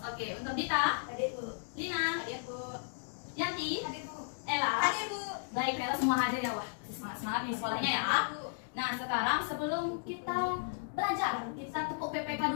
Oke, untuk Dita, Hadir, Bu. Lina, Hadir, Bu. Yanti, Hadir, Bu. Ella. Hadir, Bu. Baik, ternyata semua hadir ya. Wah, semangat nih sekolahnya ya. Bu. Nah, sekarang sebelum kita belajar, kita tepuk PPK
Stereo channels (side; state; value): right; silent; digital silence